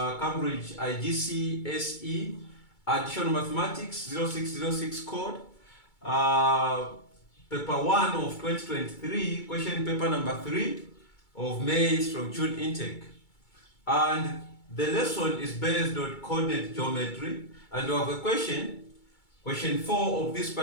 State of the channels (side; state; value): right; late; 2.2 ms